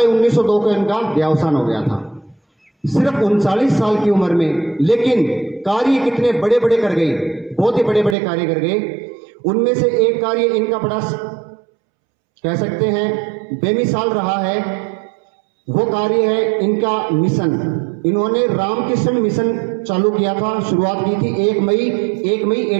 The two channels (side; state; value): left; drops out; at 8.2 s